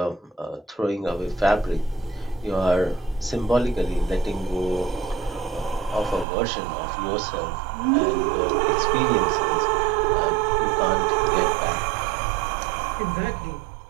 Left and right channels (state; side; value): drops out; left; at 6.2 s